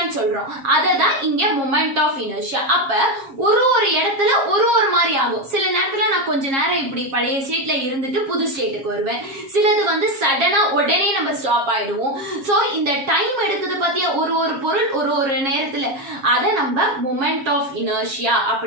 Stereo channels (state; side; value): late; left; 7.4 ms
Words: சொல்றோம். அததான் இங்க மொமெண்ட் ஆஃப் இனர்ஷியா. அப்ப ஒரு ஒரு இடத்துல ஒரு ஒரு மாதிரி ஆகும். சில நேரத்துல நான் கொஞ்ச நேரம் இப்படி பழைய ஸ்டேட்ல இருந்துட்டு புது ஸ்டேட்டுக்கு வருவேன். சிலது வந்து சடனா உடனே நம்ம ஸ்டாப் ஆயிடுவோம். சோ இந்த டைம் எடுக்குது பாத்தியா, ஒரு ஒரு பொருள் ஒரு ஒரு நேரத்துல, அத நம்ம மொமெண்ட் ஆஃப் இனர்ஷியா